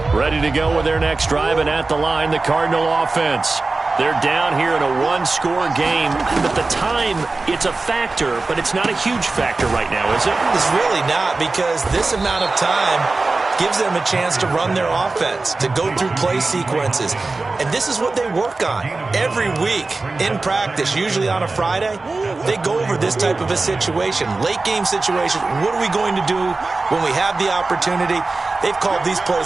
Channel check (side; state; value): left; quieter; 3.5 dB